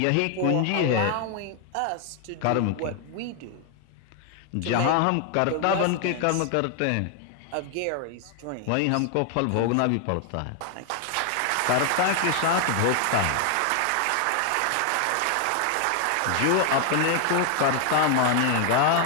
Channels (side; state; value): both; different; correlation 0.00